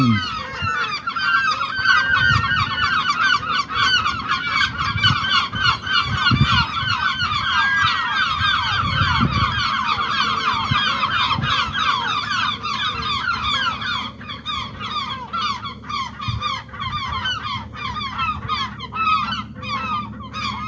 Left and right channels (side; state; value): both; identical; correlation 1.00